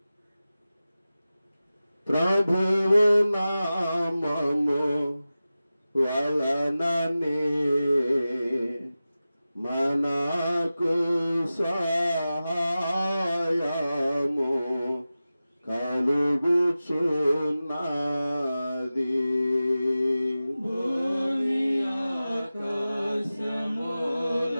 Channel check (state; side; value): inverted; both; correlation -0.95